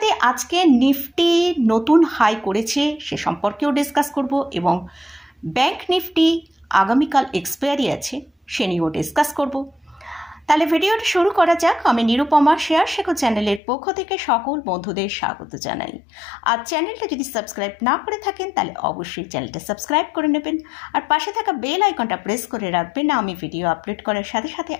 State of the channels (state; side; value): drops out; right; at 13.6 s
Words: আজকে নিফটি নতুন হাই করেছে সে সম্পর্কেও ডিসকাস করব, এবং ব্যাংক নিফটি আগামীকাল এক্সপায়ারি আছে সে নিয়েও ডিসকাস করব। তাহলে ভিডিওটা শুরু করা যাক। আমি নিরুপমা শেয়ার শেখো চ্যানেলের পক্ষ থেকে সকল বন্ধুদের স্বাগত জানাই। আর চ্যানেলটা যদি সাবস্ক্রাইব না করে থাকেন তাহলে অবশ্যই চ্যানেলটা সাবস্ক্রাইব করে নেবেন, আর পাশে থাকা বেল আইকনটা প্রেস করে রাখবেন। আমি ভিডিও আপলোড করার সাথে সাথে